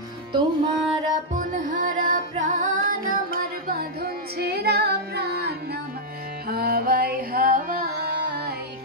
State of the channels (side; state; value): both; normal; correlation -0.05